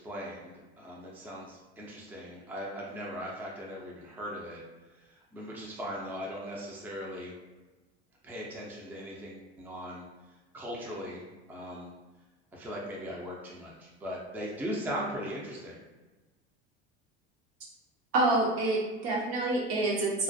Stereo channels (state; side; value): normal; both; correlation 0.29